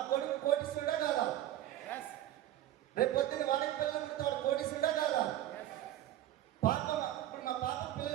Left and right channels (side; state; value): left; quieter; 13.0 dB